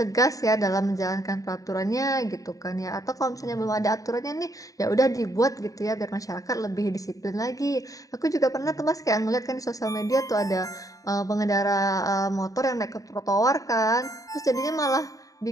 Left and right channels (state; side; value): late; right; 0.16 ms